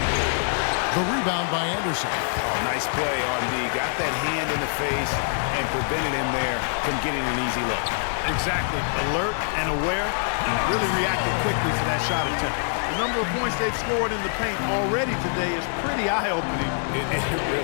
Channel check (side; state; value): right; silent; digital silence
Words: The rebound by Anderson. Oh, nice play on D. Got that hand in the face and prevented him there from getting an easy look. Exactly. Alert and aware. Really reacted quickly to that shot attempt. The number of points they've scored in the paint already today is pretty eye-opening. It